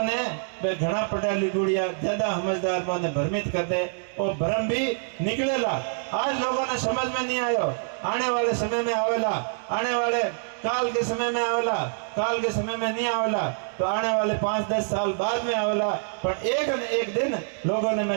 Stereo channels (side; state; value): left; silent; 61 dB below the other